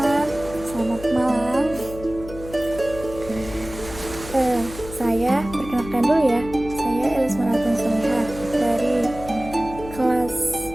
selamat malam. Saya perkenalkan dulu ya. Saya Elis Maratun Solihah dari kelas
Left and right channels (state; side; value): noise; left; hum, 13 dB below the sound